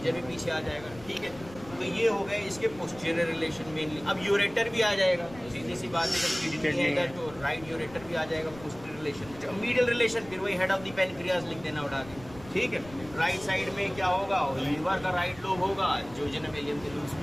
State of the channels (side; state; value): left; noise; rumble, 18 dB below the sound